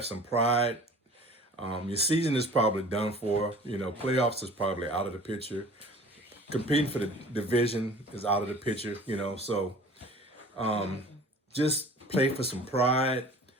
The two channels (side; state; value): both; normal; correlation 0.45